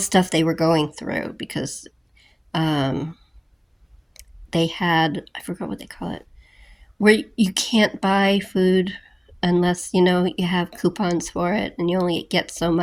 they were going through, because um, they had, I forgot what they call it, where you can't buy food unless you have coupons for it, and you only get so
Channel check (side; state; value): both; identical; correlation 1.00